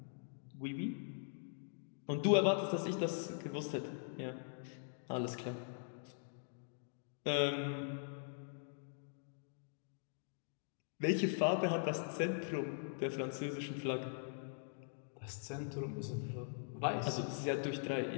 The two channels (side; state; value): right; silent; digital silence